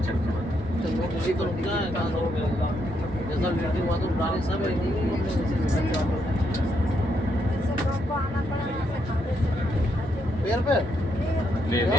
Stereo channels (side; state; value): both; normal; correlation 0.77